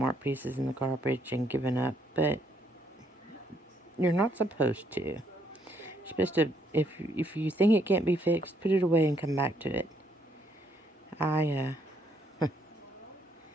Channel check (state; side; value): normal; both; correlation 0.70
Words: art pieces in the garbage and given up, but you're not supposed to. You're supposed to, if you think it can't be fixed, put it away and come back to it. I